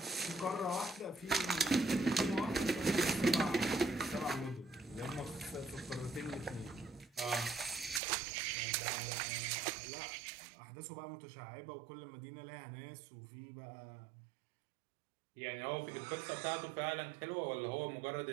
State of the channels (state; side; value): drops out; left; at 8.0 s